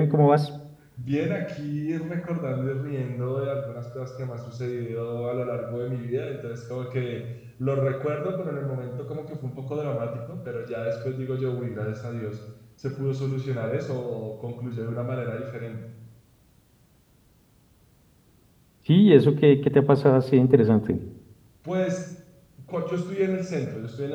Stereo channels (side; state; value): both; identical; correlation 1.00